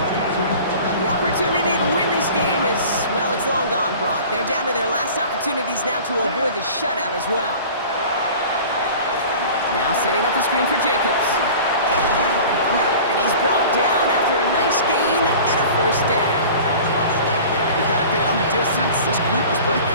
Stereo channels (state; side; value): inverted; both; correlation -0.41